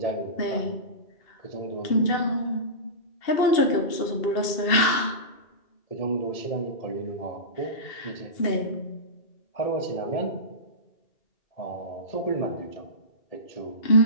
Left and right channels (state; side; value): late; right; 2.7 ms